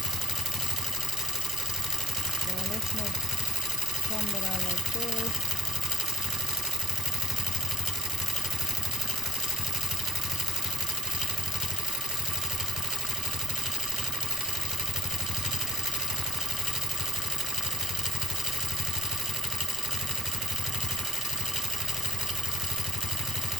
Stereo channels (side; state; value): right; noise; rumble, 21 dB below the sound